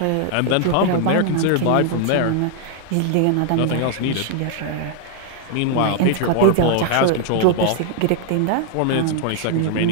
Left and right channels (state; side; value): different; both; correlation 0.00